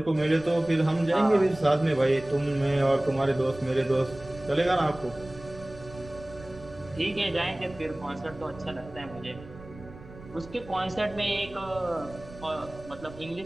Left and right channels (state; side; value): noise; right; rumble, 18 dB below the sound